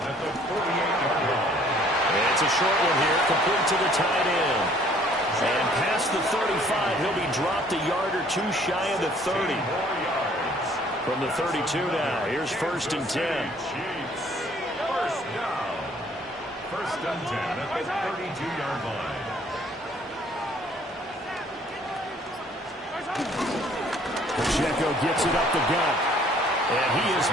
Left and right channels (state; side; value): normal; both; correlation 0.58